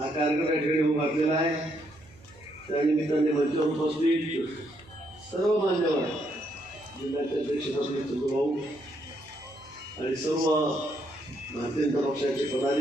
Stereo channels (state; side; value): noise; right; hum, 26 dB below the sound